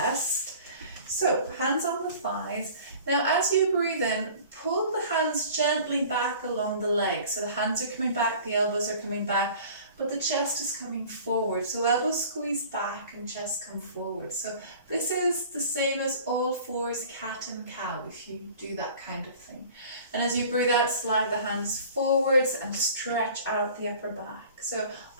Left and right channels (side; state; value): both; inverted; correlation -0.45